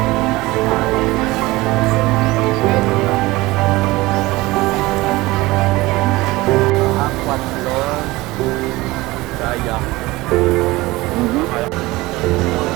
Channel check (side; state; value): left; quieter; 20.2 dB